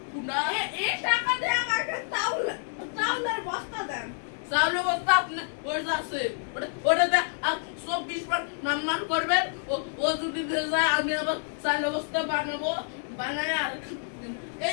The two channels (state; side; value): silent; right; digital silence